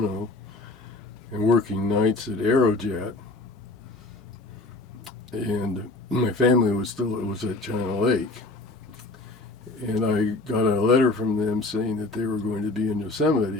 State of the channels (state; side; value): quieter; right; 3.1 dB